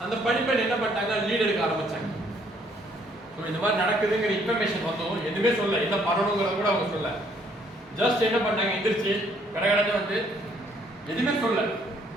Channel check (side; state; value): both; normal; correlation 0.65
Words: அந்த பணிப்பெண் என்ன பண்ணிட்டாங்க, லீட் எடுக்க ஆரம்பிச்சாங்க. ஸோ இந்த மாதிரி நடக்குதுங்கிற இன்ஃபர்மேஷன் வந்தோம், எதுவுமே சொல்ல, என்ன பண்ணணுங்கிறத கூட அவங்க சொல்ல. ஜஸ்ட் என்ன பண்ணாங்க, எந்திரிச்சு கடகடன்னு வந்து எதுவுமே சொல்ல.